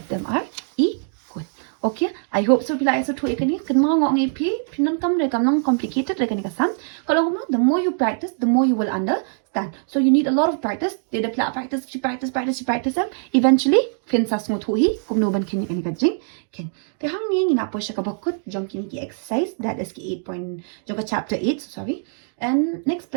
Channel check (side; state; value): left; silent; 64 dB below the other